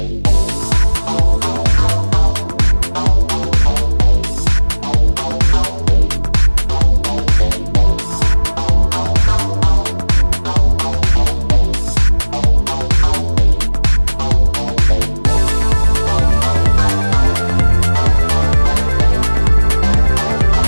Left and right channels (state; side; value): inverted; both; correlation -1.00